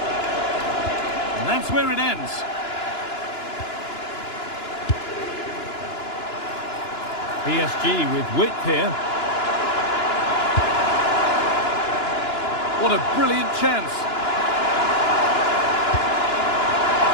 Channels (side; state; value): right; late; 2.9 ms